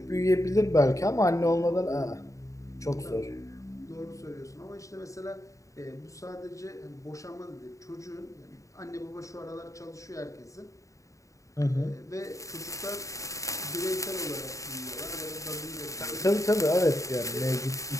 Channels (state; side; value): late; right; 0.16 ms